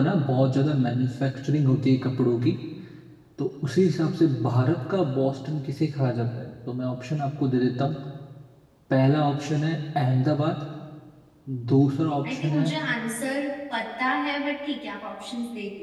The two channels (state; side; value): identical; both; correlation 1.00